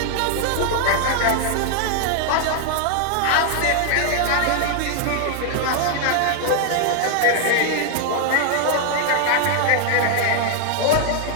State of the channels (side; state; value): both; different; correlation 0.00